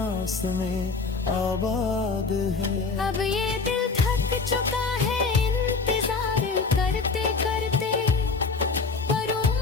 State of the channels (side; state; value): right; quieter; 4.4 dB